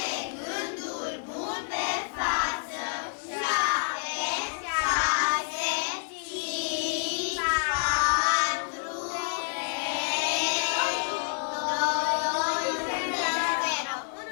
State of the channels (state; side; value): silent; right; digital silence